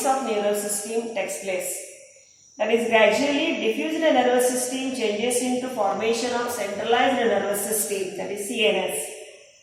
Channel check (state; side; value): identical; both; correlation 1.00